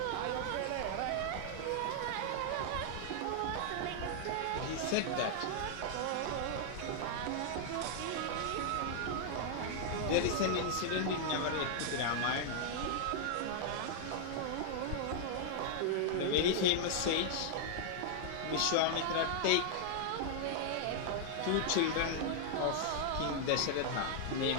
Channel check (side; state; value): both; different; correlation -0.01